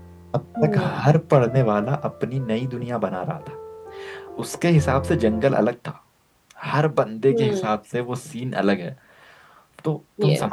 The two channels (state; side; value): identical; both; correlation 1.00